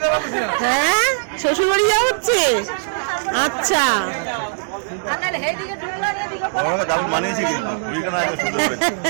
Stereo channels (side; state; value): left; silent; digital silence